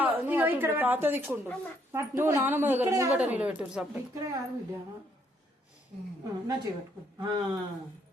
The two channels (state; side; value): normal; both; correlation 0.70